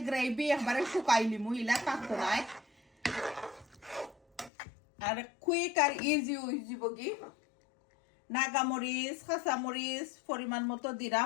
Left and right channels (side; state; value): right; drops out; at 4.5 s